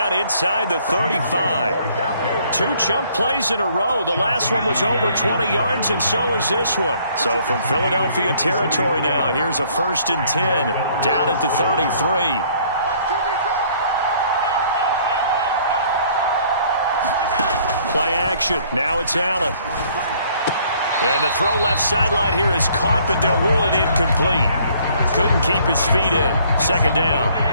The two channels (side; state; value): both; inverted; correlation -0.61